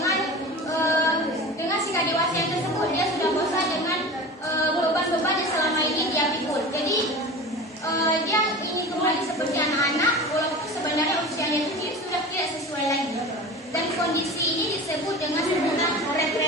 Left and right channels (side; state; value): both; normal; correlation 0.34